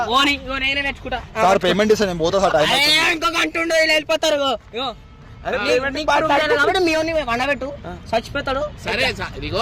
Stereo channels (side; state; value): both; identical; correlation 1.00